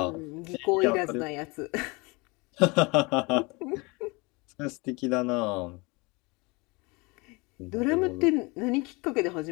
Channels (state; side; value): quieter; right; 26.6 dB